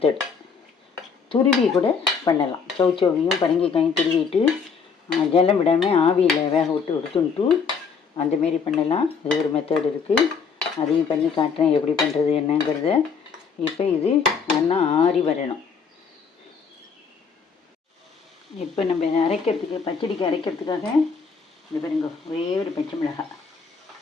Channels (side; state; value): right; quieter; 5.7 dB